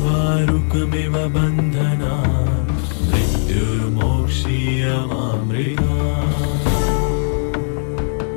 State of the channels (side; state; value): right; silent; digital silence